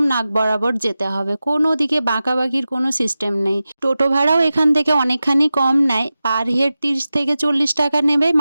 নাক বরাবর যেতে হবে, কোনো দিকে বাঁকাবাকির কোনো সিস্টেম নেই। টোটো ভাড়াও এখান থেকে অনেকখানি কম নেয়, পার হেড 30 থেকে 40 টাকা নেবে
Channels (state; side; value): inverted; both; correlation -0.94